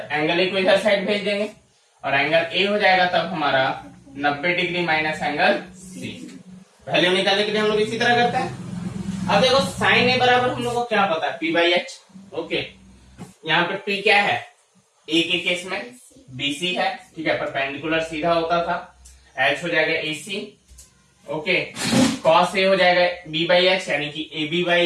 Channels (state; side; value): identical; both; correlation 1.00